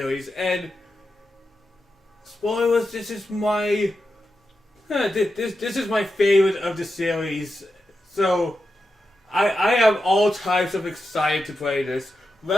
and spoilers, this is my this is my favorite of the series. So I am all types of excited to play this.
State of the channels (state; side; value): normal; both; correlation 0.89